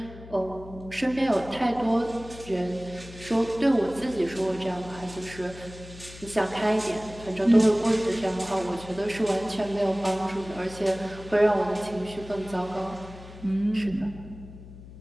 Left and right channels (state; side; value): noise; left; hum, 16 dB below the sound